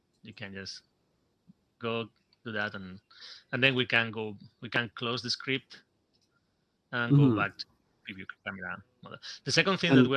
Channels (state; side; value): identical; both; correlation 1.00